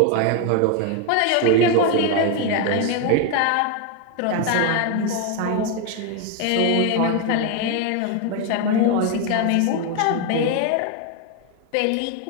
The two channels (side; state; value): both; different; correlation 0.01